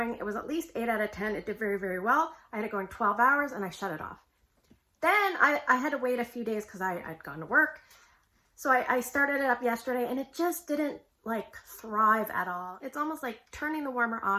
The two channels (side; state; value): both; identical; correlation 1.00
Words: it was at least 8 out of 10. It did very, very well. I had it going 12 hours and I shut it off. Then I had to wait a few days because I'd gone to work. So I started it up yesterday and it just didn't like thrive at all. It's almost like turning the warmer